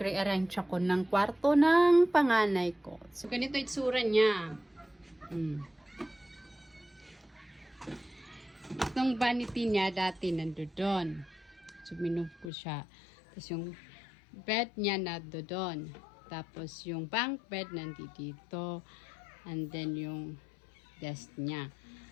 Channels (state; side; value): drops out; right; at 12.5 s